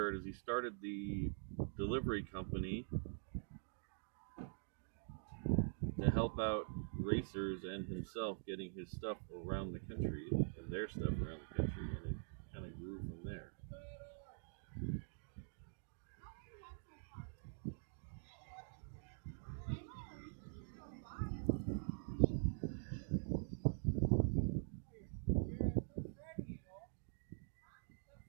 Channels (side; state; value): left; silent; digital silence